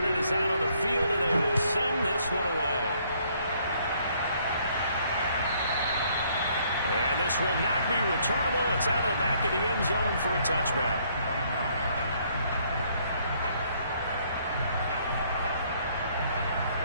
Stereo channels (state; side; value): inverted; both; correlation -0.66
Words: is out on the field, and they will send this one away. And this will not be returnable. It's out of the back of the end zone for a touchback.